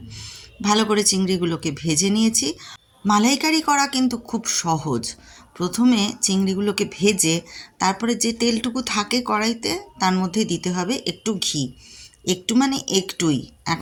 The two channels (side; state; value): both; identical; correlation 1.00